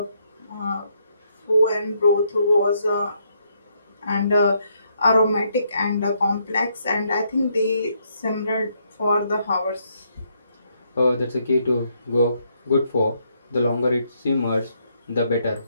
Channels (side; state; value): both; inverted; correlation -0.74